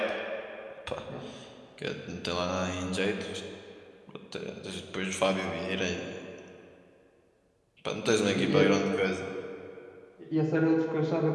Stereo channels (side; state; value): both; identical; correlation 1.00